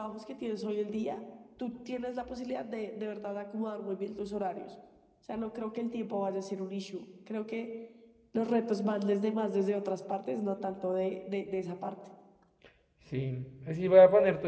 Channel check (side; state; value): both; identical; correlation 1.00